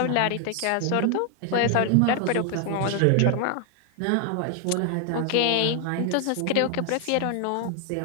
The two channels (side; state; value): both; different; correlation 0.00